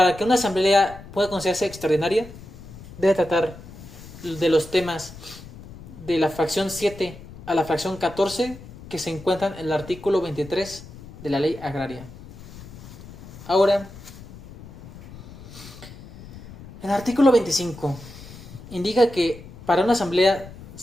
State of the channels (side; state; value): left; noise; rumble, 16 dB below the sound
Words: que una asamblea pueda considerarse extraordinaria, debe tratar de los temas de la fracción 7 a la fracción 14 que se encuentran en el artículo 23 de la ley agraria. Ahora, el artículo 25 indica que para una asamblea